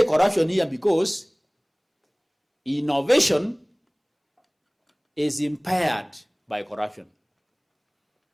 corruption here because innovation is impaired by corruption.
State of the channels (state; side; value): identical; both; correlation 1.00